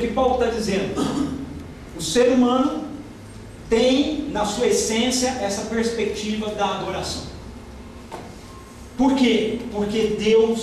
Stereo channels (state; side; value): identical; both; correlation 1.00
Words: Paulo está dizendo. O ser humano tem na sua essência essa perspectiva da adoração. Por quê? Porque